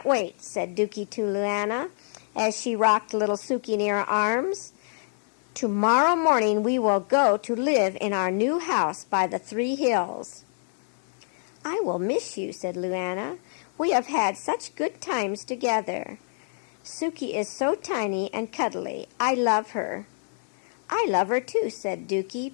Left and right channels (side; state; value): right; silent; 57 dB below the other